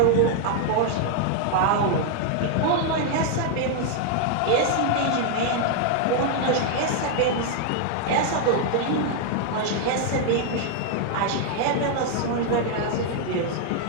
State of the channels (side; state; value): both; different; correlation 0.00